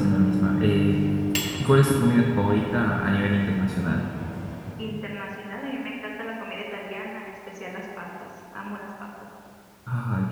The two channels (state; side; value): identical; both; correlation 1.00